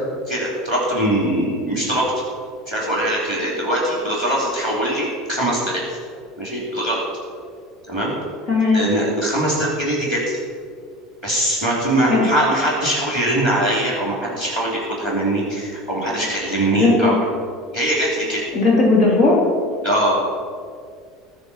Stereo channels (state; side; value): normal; both; correlation 0.33